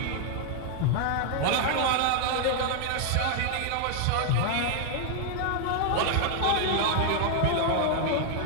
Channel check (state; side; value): different; both; correlation 0.00